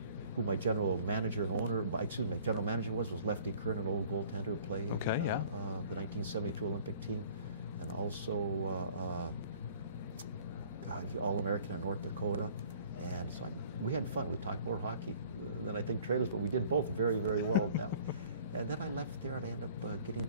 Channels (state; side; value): inverted; both; correlation -0.52